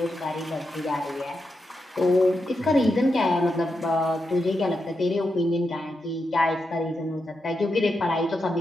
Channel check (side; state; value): both; normal; correlation 0.86